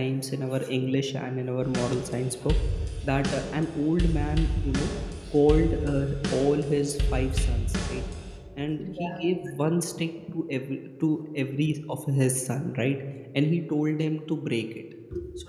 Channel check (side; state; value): both; identical; correlation 1.00